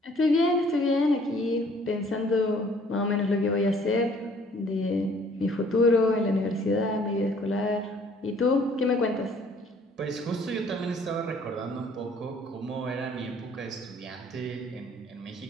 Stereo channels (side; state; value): both; normal; correlation 0.58